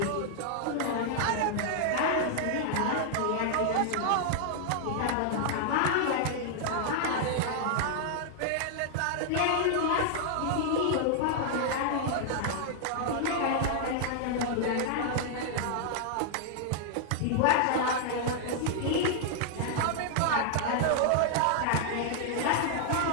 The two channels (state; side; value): different; both; correlation -0.01